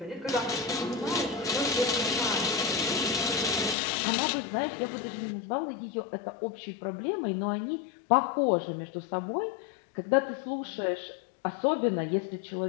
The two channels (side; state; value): right; drops out; at 3.8 s